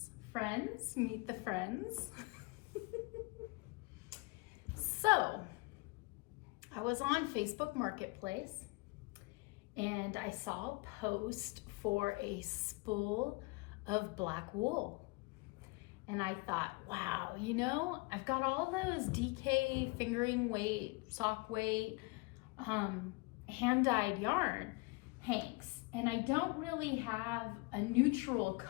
Friends, meet the friends. So, I was on Facebook Marketplace and I saw a post for a spool of black wool. And I thought, wow, I've got all those DK fingering weight, sock weight, hand-dyed yarn hanks. And I don't really have a neutral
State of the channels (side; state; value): right; quieter; 26.2 dB